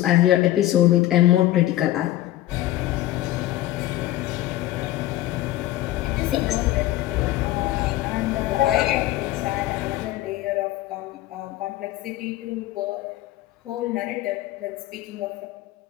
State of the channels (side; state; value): right; quieter; 14.9 dB